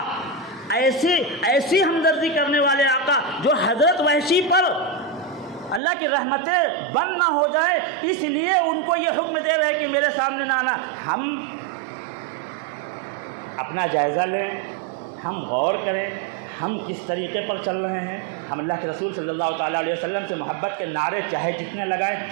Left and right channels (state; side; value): drops out; left; at 5.8 s